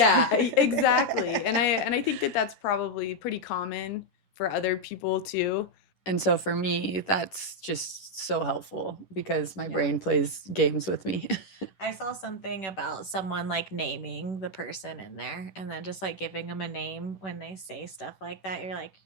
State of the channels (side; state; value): right; late; 11 ms